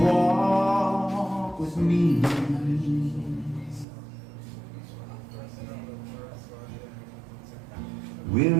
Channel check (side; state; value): left; drops out; at 3.9 s